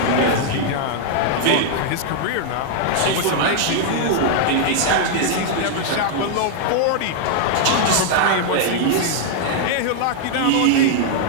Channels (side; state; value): both; different; correlation 0.00